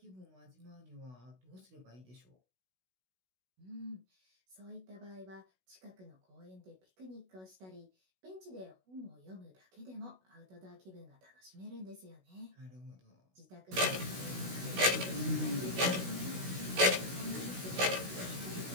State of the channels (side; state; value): left; late; 16 ms